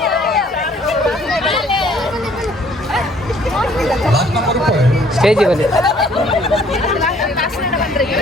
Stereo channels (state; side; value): normal; both; correlation 0.59